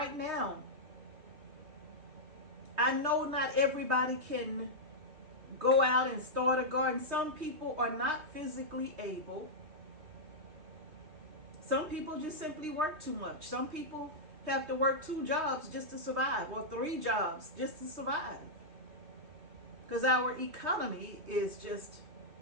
now, I know not everybody can go out and start a garden. Some people are not physically able. Some people just simply work too much. Some people have to work 2 jobs just to survive, or 3 jobs just to survive. Because our economy is just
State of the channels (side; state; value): left; late; 3.2 ms